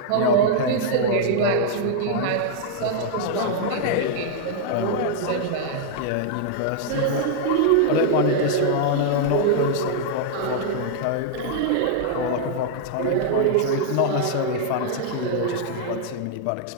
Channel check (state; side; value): different; both; correlation -0.01